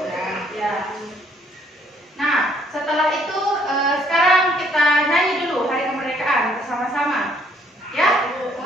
Ya. Nah, setelah itu sekarang kita nyanyi dulu Hari Kemerdekaan bersama-sama. Ya,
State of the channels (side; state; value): both; normal; correlation 0.65